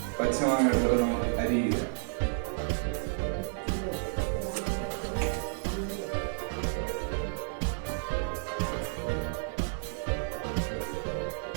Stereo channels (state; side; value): silent; left; digital silence